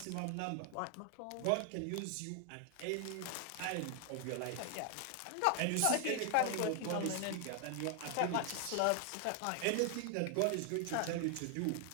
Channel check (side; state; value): both; different; correlation 0.00